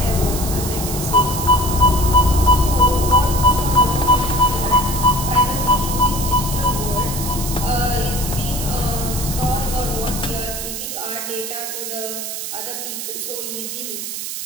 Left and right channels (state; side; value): noise; right; hiss, 6 dB below the sound